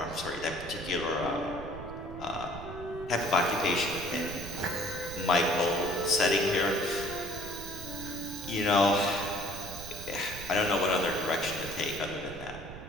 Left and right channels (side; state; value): right; noise; rumble, 12 dB below the sound